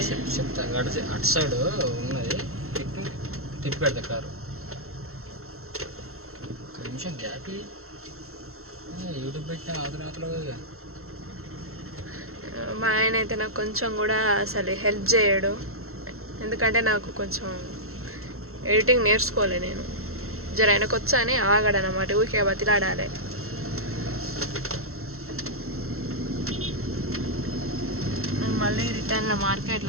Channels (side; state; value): left; late; 0.63 ms